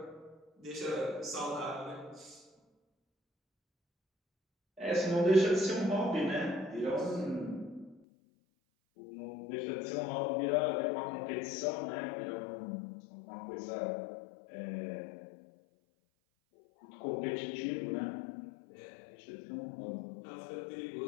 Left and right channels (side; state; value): right; drops out; at 8.0 s